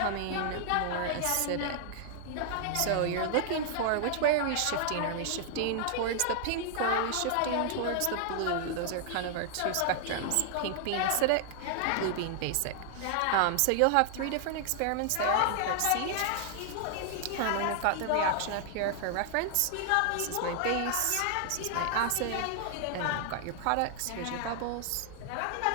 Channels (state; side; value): different; both; correlation -0.01